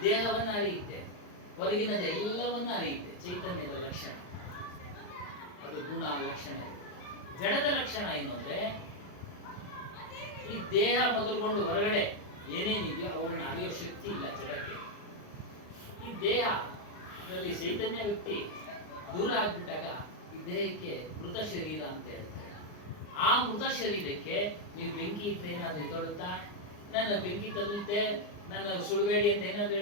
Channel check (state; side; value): late; right; 39 ms